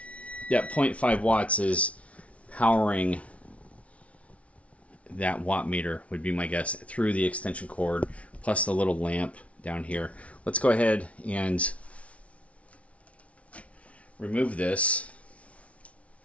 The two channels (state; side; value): late; right; 0.064 ms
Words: Yeah, 0.5 watts is powering that watt meter, would be my guess, through the extension cord plus the little lamp down here. Let's go ahead and remove this.